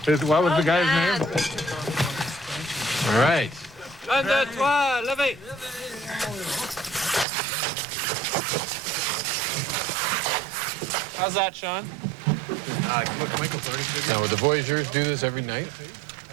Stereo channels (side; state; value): left; drops out; at 7.2 s